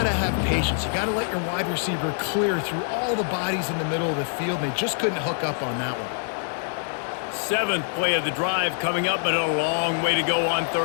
to have patience. You got to let your wide receiver clear through all the bodies in the middle of the field, and they just couldn't hook up on that one. 7th play of the drive coming up, but a long way to go on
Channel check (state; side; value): silent; right; digital silence